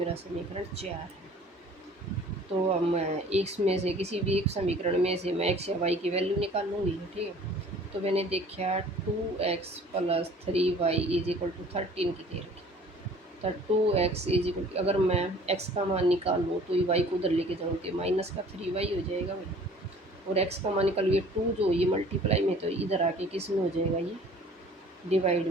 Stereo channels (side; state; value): both; normal; correlation 0.50